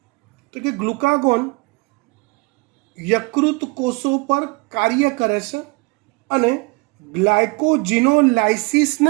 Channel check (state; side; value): quieter; left; 27.0 dB